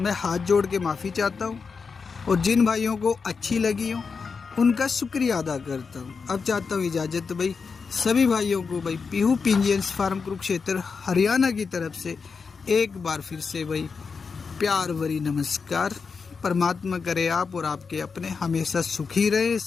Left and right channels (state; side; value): quieter; right; 5.2 dB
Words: हाथ जोड़ के माफ़ी चाहता हूँ, और जिन भाइयों को अच्छी लगी हो उनका शुक्रिया अदा करता हूँ। अब चाहता हूँ इजाज़त भाई सभी भाइयों को भाई पीहू पिंजियंस फार्म कुरुक्षेत्र हरियाणा की तरफ से एक बार फिर से भाई प्यार भरी नमस्कार। परमात्मा करे आप और आपके अपने हमेशा सुखी रहे,